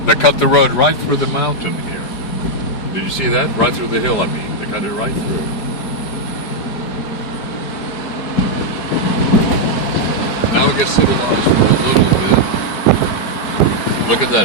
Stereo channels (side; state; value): right; late; 4.5 ms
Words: They cut the road right through the mountain here. Did you see that? Right through the hill, I mean. They cut it right through. Now it gets civilized for a little bit. Look at